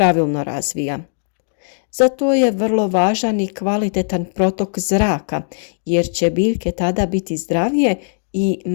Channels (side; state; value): right; silent; digital silence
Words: razvija. Zato je vrlo važan i kvalitetan protok zraka, jer će biljke tada biti zdravije i